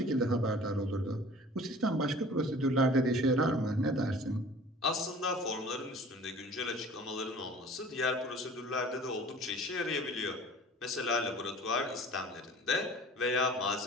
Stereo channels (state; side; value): normal; both; correlation 0.46